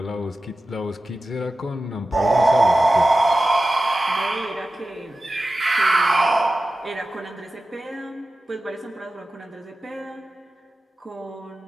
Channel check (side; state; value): both; normal; correlation 0.94